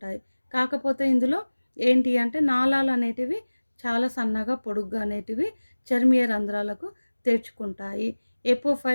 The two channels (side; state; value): both; inverted; correlation -1.00